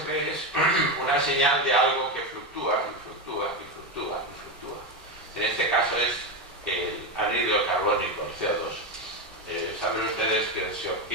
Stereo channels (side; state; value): both; normal; correlation 0.13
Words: ve es una señal de algo que fluctúa y fluctúa y fluctúa y fluctúa. En este caso es el anhídrido carbónico, el CO2. Saben ustedes que se